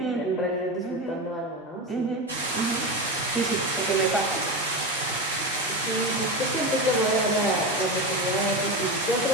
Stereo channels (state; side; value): normal; both; correlation 0.19